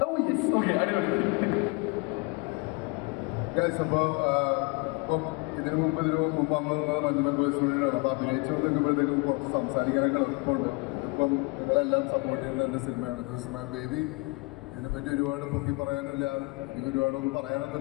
ഓക്കെ, അടിപൊളി. ഇപ്പം ഇതിനു മുമ്പ് വന്നത് മഞ്ഞുമൽ ബോയ്സ് വേണ്ടിയിട്ടാണ്. അപ്പോൾ അഭിനയിച്ചു വന്നിരിക്കുമ്പോഴത്തേക്കും കുറച്ച് സംസാരിക്കാനൊക്കെ എളുപ്പമുണ്ട്. ഇപ്പം നിങ്ങളെല്ലാം സപ്പോർട്ട് ചെയ്യുന്ന എൻ്റെ സിനിമയാണ്. വേദി ഇതിനെപ്പറ്റി ഒരുപാട് പൊക്കി പറയാനില്ല, എനിക്ക് ഒരുപാടൊന്നും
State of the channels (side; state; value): right; quieter; 27.7 dB